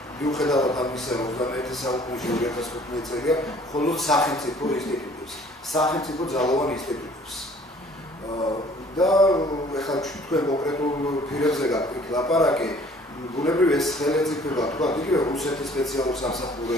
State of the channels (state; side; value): normal; both; correlation 0.54